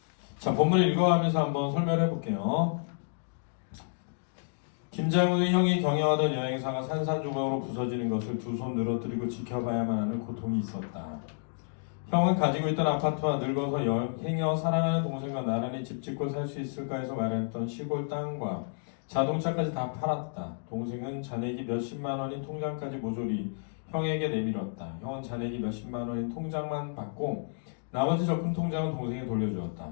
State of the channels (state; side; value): silent; right; digital silence